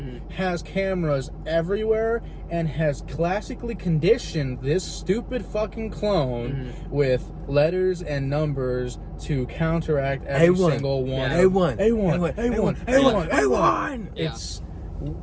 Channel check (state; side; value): identical; both; correlation 1.00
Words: has cameras everywhere, and has classically conditioned this stupid fucking clone with letters and numbers to counteract every single one. A1. It's